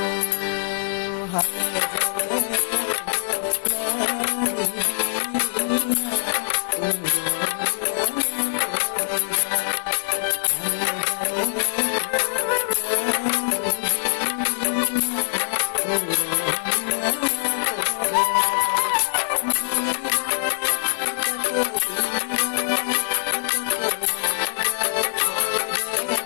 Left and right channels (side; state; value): right; silent; digital silence